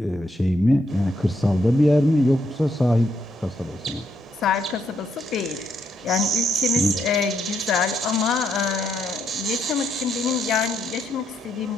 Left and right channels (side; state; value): both; normal; correlation 0.77